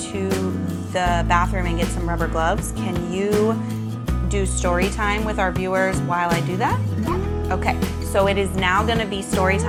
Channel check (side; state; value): both; identical; correlation 1.00